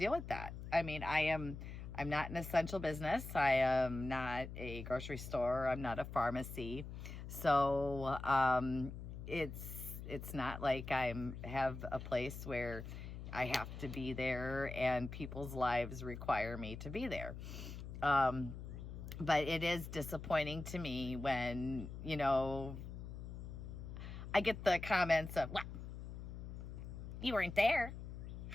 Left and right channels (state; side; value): noise; left; hum, 9 dB below the sound